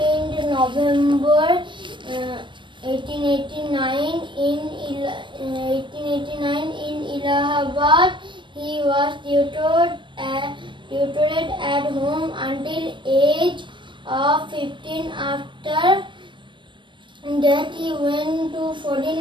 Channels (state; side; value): late; left; 0.23 ms